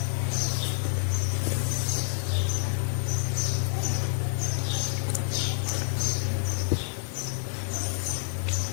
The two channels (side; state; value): right; silent; 59 dB below the other